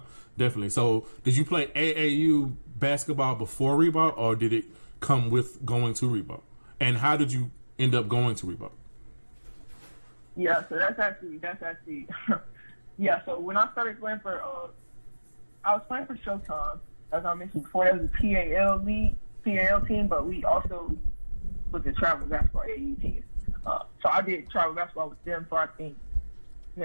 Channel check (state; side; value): inverted; both; correlation -1.00